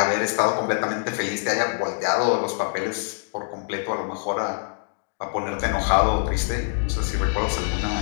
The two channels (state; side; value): silent; right; digital silence